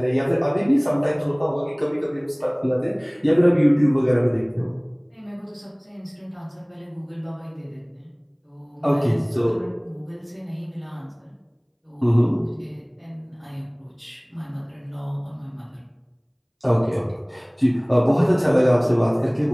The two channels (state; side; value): identical; both; correlation 1.00